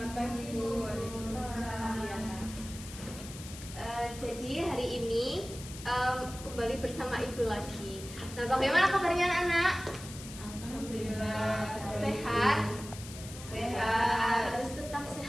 pagi Bu. Waalaikumsalam. Jadi hari ini kembali bersama Ibu lagi. Nah, bagaimana kabarnya anak-anak? Alhamdulillah. Sehat? Sehat. Harus tetap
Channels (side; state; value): left; noise; hiss, 13 dB below the sound